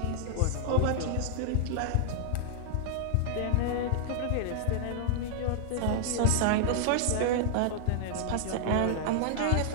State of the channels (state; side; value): different; both; correlation -0.01